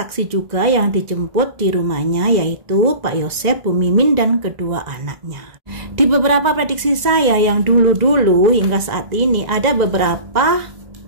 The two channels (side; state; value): left; late; 2.0 ms